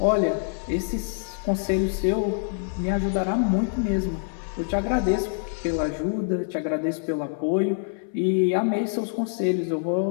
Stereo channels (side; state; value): right; silent; 61 dB below the other